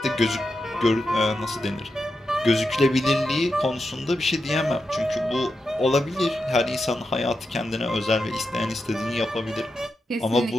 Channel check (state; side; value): normal; both; correlation 0.88